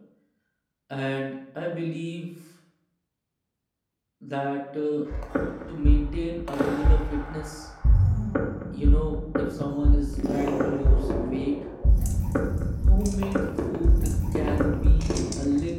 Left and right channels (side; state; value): both; identical; correlation 1.00